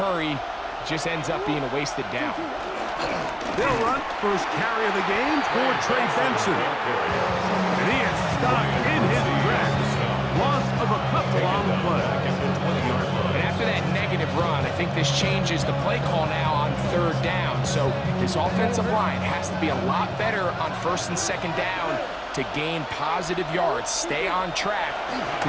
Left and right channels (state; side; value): identical; both; correlation 1.00